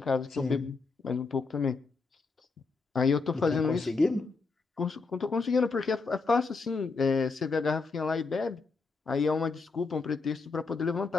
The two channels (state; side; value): quieter; right; 4.3 dB